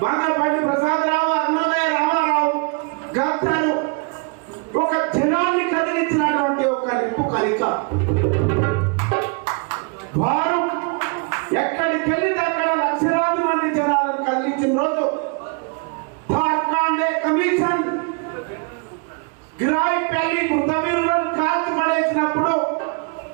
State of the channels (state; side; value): quieter; left; 33.8 dB